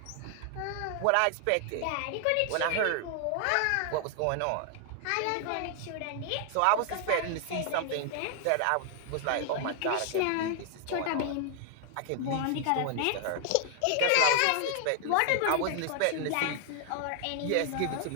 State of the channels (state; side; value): different; both; correlation 0.00